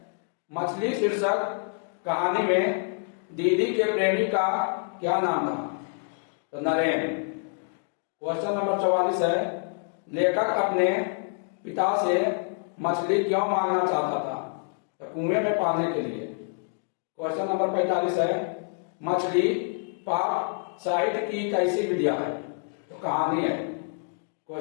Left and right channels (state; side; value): silent; right; 60 dB below the other